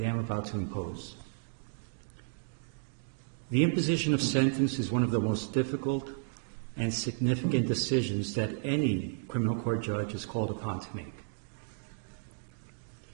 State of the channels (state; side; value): silent; left; digital silence